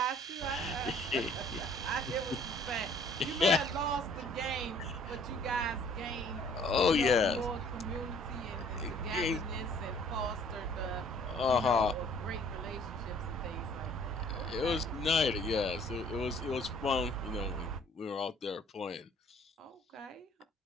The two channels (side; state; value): both; normal; correlation 0.56